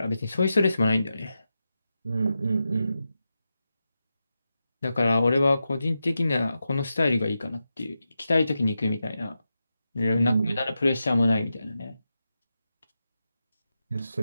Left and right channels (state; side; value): inverted; both; correlation -0.89